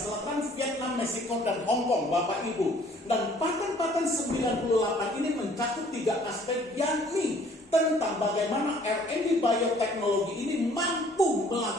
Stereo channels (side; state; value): both; normal; correlation 0.57